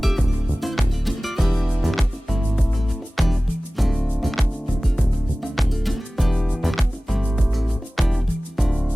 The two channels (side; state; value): both; normal; correlation 0.97